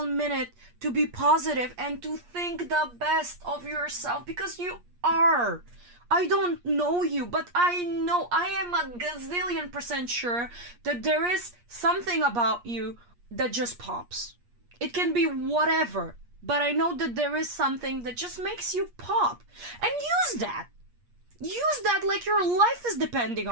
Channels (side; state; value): left; late; 8.4 ms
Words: minute to be positive and to think the best of yourself, because you are. I don't know you, but I know, I am a gazillion% sure that there is something about you that just pops. It can be whatever, but I know that there is something that just makes you pop. And use that. Use that like your life is depending